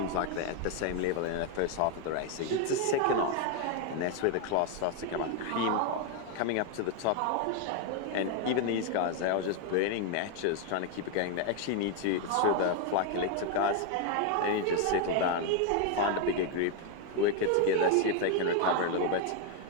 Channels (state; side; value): different; both; correlation 0.01